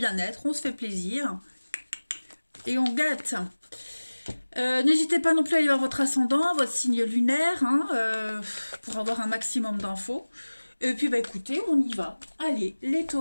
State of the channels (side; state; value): both; inverted; correlation -1.00